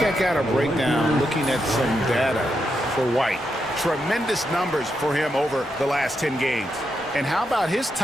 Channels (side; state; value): both; normal; correlation 0.83